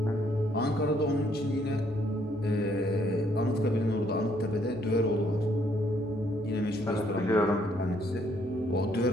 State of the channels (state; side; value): normal; both; correlation 0.68